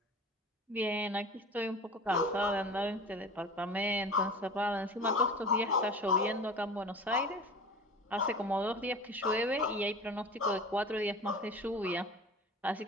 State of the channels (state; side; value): normal; both; correlation 0.36